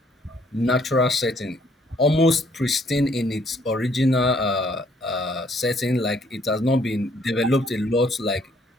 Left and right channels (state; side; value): normal; both; correlation 0.65